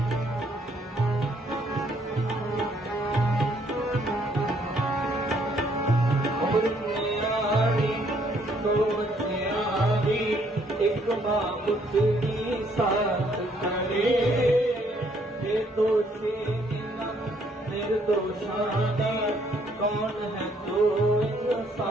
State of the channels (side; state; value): both; normal; correlation 0.67